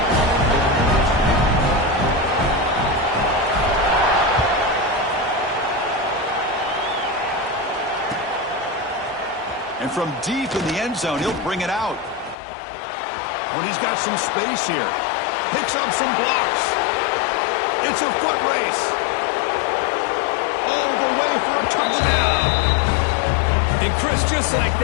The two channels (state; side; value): drops out; right; at 12.4 s